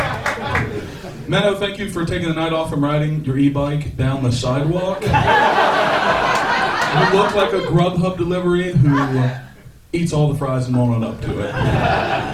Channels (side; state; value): both; identical; correlation 1.00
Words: Minnow, thank you for taking the night off from riding your e-bike down the sidewalk. You look like a Grubhub delivery who eats all the fries and won't own up to it.